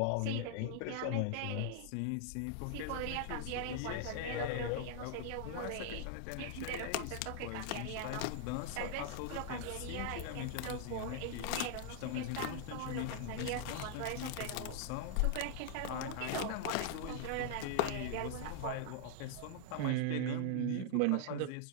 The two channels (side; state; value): both; different; correlation -0.01